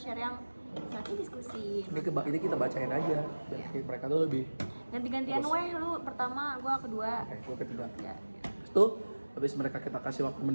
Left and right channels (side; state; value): both; inverted; correlation -1.00